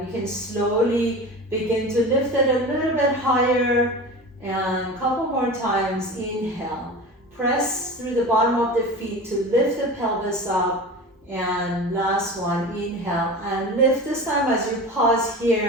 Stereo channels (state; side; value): normal; both; correlation 0.32